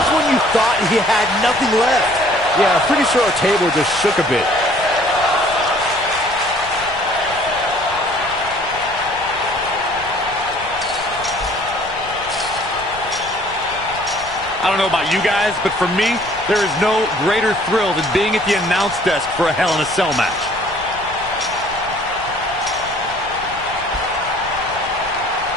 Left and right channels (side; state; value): left; noise; rumble, 18 dB below the sound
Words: when you thought he had nothing left. Yeah, I'm pretty sure our table just shook a bit. I don't know about you guys, but for me, there is no greater thrill than being at the announce desk for a Hell in a Cell match.